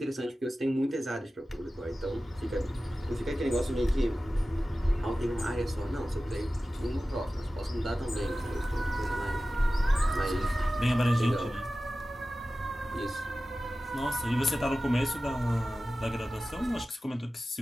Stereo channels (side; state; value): both; normal; correlation 0.95